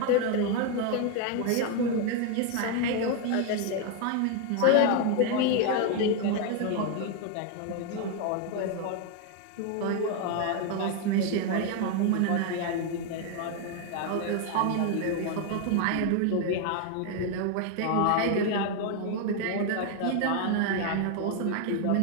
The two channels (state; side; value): different; both; correlation 0.01